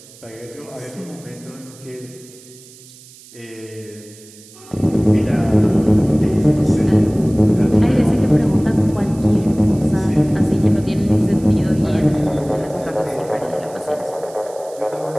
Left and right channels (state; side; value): noise; right; hiss, 22 dB below the sound